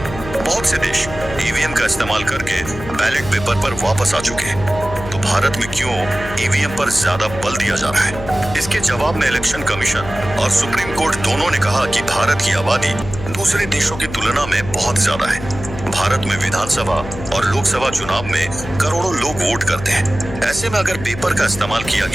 बहुत से देश ईवीएम का इस्तेमाल करके बैलेट पेपर पर वापस आ चुके हैं, तो भारत में क्यों ईवीएम पर ज्यादा बल दिया जा रहा है? इसके जवाब में इलेक्शन कमीशन और सुप्रीम कोर्ट दोनों ने कहा कि भारत की आबादी दूसरे देशों की तुलना में बहुत ज्यादा है। भारत में विधानसभा और लोकसभा चुनाव में करोड़ों लोग वोट करते हैं। ऐसे में अगर पेपर का इस्तेमाल किया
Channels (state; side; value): noise; left; hum, 11 dB below the sound